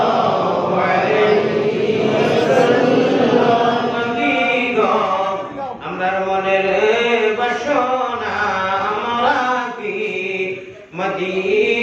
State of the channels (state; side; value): identical; both; correlation 1.00